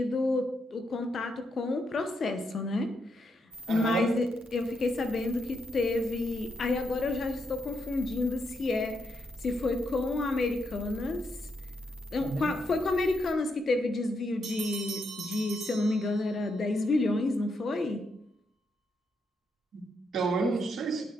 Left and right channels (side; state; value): both; normal; correlation 0.80